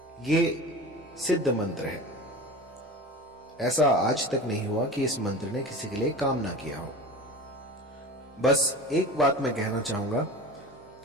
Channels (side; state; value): both; normal; correlation 0.34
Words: ये सिद्ध मंत्र है। ऐसा आज तक नहीं हुआ कि इस मंत्र ने किसी के लिए काम ना किया हो। बस एक बात मैं कहना चाहूंगा